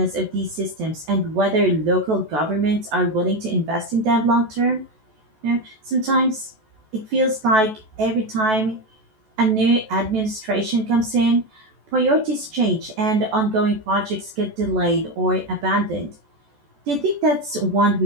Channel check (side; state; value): left; late; 14 ms